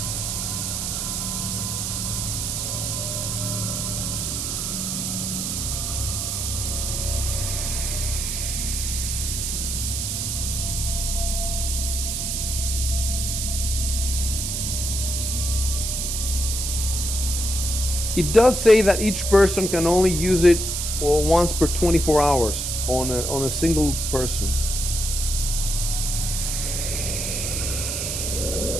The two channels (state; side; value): noise; right; hiss, 2 dB below the sound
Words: It does say that each person can only use it once per 24 hours on a single person.